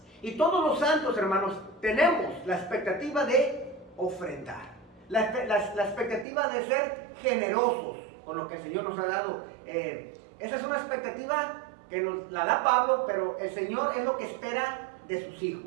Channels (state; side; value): drops out; left; at 6.2 s